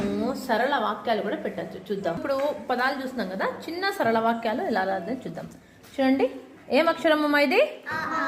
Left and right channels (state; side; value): identical; both; correlation 1.00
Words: సరళ వాక్యాలు కూడా పెట్టచ్చు. చూద్దాం. ఇప్పుడు పదాలు చూస్తున్నాం కదా, చిన్న సరళ వాక్యాలు ఎలా రాదని చూద్దాం. చూడండి, ఏం అక్షరము ఇది?